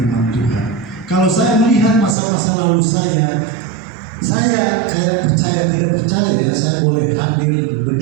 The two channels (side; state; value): left; drops out; at 2.1 s